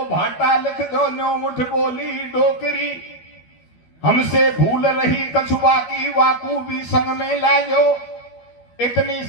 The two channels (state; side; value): late; right; 12 ms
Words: भाटा लिख दो, 9 मुठ बोली डोकरी, हमसे भूल रही कछुआ की वाकू भी संग में लाजो, इतनी